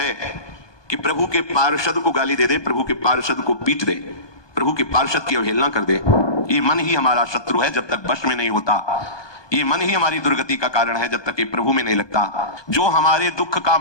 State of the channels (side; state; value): right; late; 1.2 ms